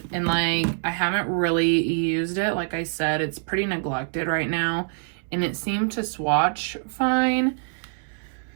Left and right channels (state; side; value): silent; left; 62 dB below the other